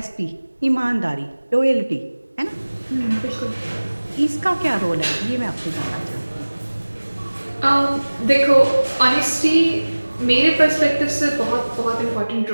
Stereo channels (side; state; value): both; inverted; correlation -1.00